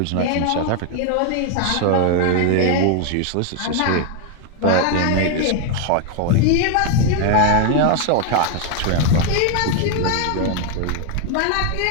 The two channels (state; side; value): different; both; correlation 0.01